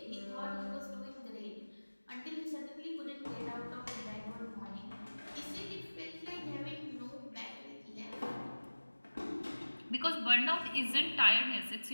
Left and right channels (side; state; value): both; inverted; correlation -1.00